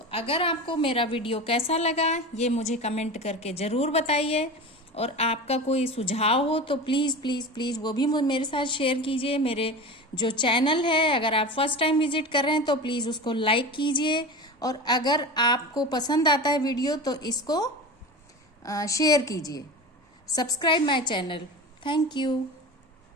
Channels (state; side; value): normal; both; correlation 0.29